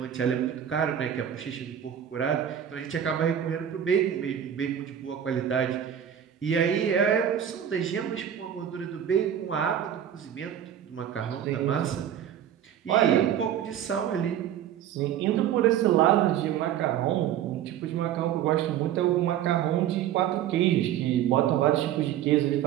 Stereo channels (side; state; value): left; quieter; 10.0 dB